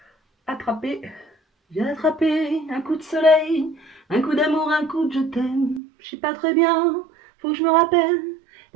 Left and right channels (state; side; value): drops out; left; at 5.8 s